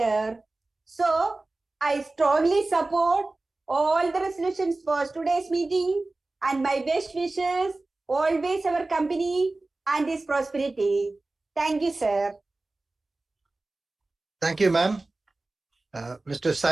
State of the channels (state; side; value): quieter; left; 3.1 dB